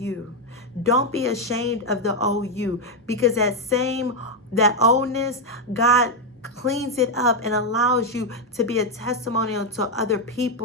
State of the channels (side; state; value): both; normal; correlation 0.02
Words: Don't be ashamed of the OU, because that oldness, God cleans it up and allows you to be a testimonial to other